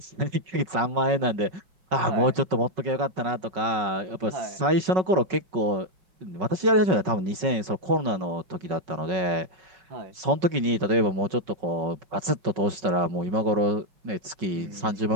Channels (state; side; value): late; left; 5.3 ms